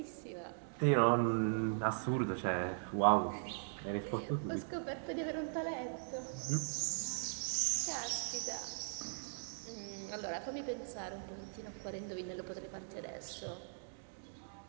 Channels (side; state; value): left; silent; digital silence